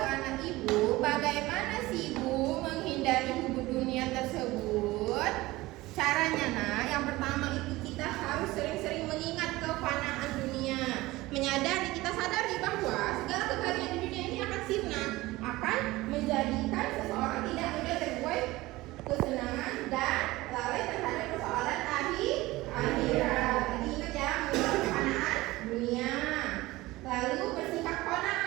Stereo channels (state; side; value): quieter; left; 19.2 dB